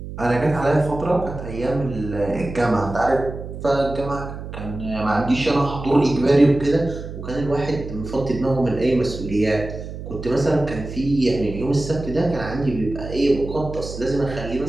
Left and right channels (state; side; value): noise; right; hum, 10 dB below the sound